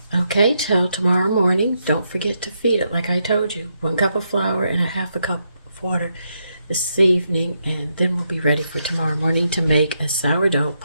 Okay, till tomorrow morning. Don't forget to feed it like I told you. 1 cup of flour and 1/2 cup of water. this evening, and then we'll be ready for tomorrow morning to make a sourdough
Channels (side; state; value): both; inverted; correlation -0.80